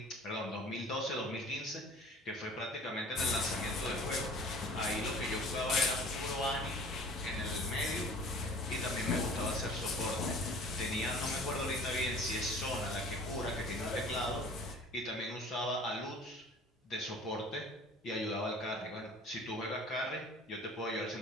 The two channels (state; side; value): normal; both; correlation 0.47